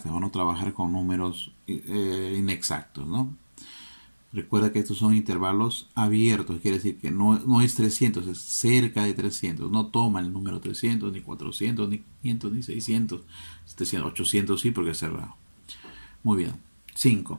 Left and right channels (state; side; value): inverted; both; correlation -1.00